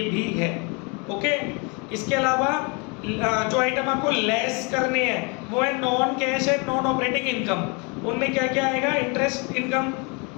भी है। ओके, इसके अलावा जो आइटम आपको लेस करने हैं वो है non cash and non operating income. उनमें क्या क्या आएगा, interest income,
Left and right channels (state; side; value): quieter; right; 31.7 dB